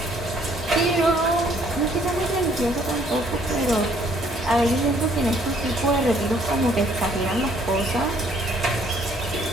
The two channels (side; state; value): both; normal; correlation 0.63